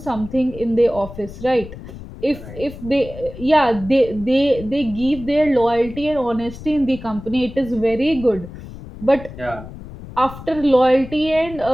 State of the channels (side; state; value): left; noise; rumble, 14 dB below the sound